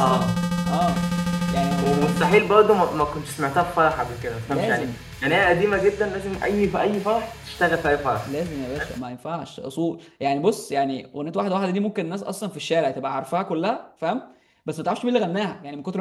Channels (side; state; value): both; identical; correlation 1.00